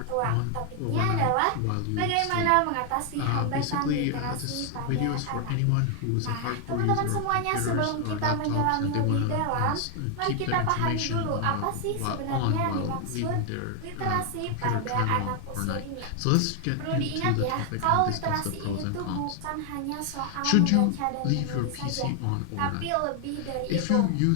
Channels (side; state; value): both; different; correlation 0.00